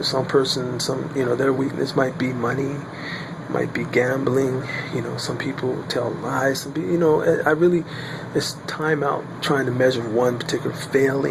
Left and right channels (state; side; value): identical; both; correlation 1.00